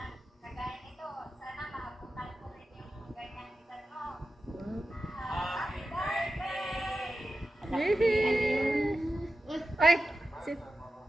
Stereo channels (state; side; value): normal; both; correlation 0.92